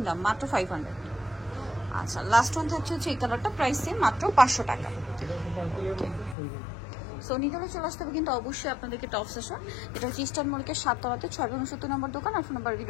দাম, মাত্র 500। আচ্ছা, লাস্ট ওয়ান থাকছে হচ্ছে এই কালারটা, প্রাইস সেম, মাত্র 500 টাকা। সো নিতে হলে চলে আসতে হবে কিন্তু অবশ্যই আপনাদেরকে টপ সেশন। এটা হচ্ছে ইস্টার্ন মল্লিকের 7 তলাতে 670 নম্বর দোকান। আর ফোন নাম্বার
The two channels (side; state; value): right; drops out; at 6.4 s